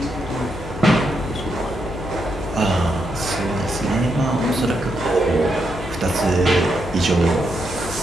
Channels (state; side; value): noise; left; hum, 11 dB below the sound